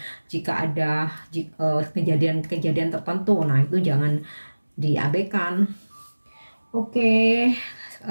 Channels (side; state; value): both; inverted; correlation -1.00